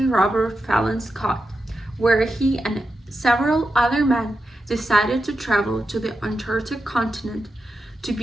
Robert Fallon Scott, where he and several other men decided to travel to the Antarctic continent to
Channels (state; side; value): normal; both; correlation 0.89